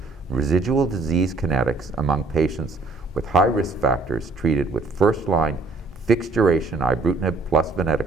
Residual Disease Kinetics Among Patients with High Risk Factors Treated with First-Line Fixed-Duration Ibrutinib plus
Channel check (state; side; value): quieter; left; 3.6 dB